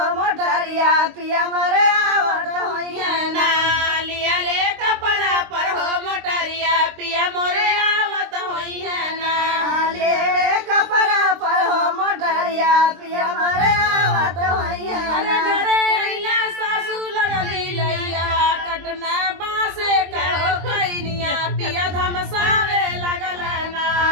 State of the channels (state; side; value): late; left; 23 ms